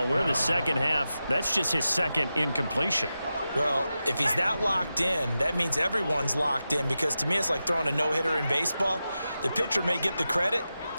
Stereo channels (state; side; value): inverted; both; correlation -0.92